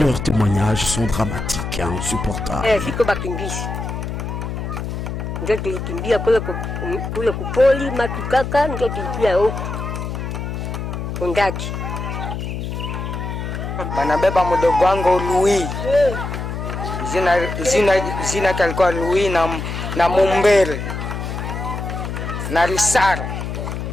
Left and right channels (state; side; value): noise; left; hum, 5 dB below the sound